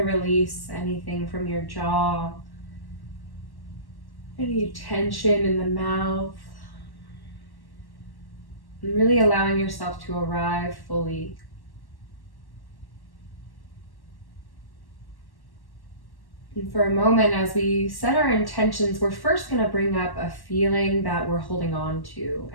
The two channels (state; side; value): late; right; 1.1 ms